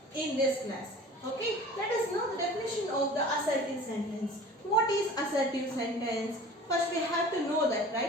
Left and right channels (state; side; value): normal; both; correlation 0.42